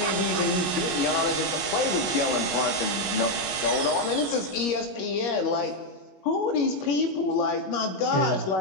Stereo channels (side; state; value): right; late; 21 ms